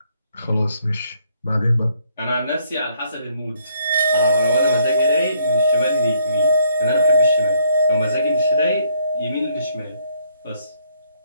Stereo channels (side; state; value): both; inverted; correlation -0.68